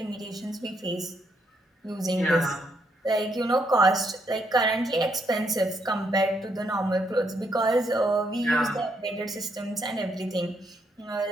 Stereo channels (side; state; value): both; normal; correlation 0.75